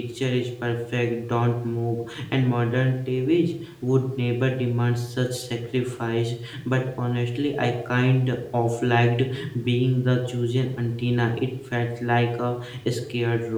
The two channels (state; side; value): identical; both; correlation 1.00